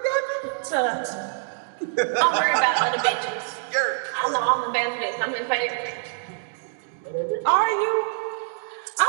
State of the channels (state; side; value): silent; left; digital silence